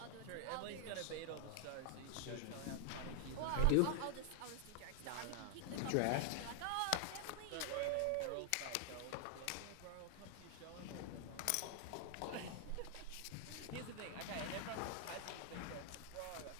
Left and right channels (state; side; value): different; both; correlation 0.00